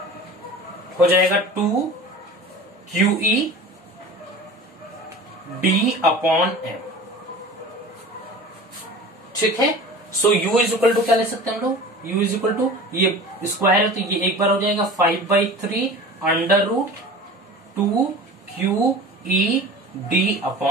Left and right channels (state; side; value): normal; both; correlation 0.38